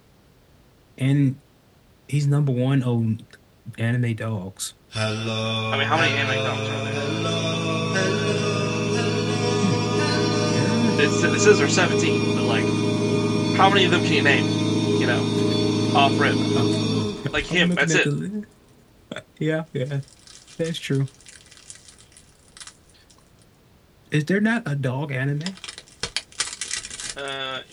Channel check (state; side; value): identical; both; correlation 1.00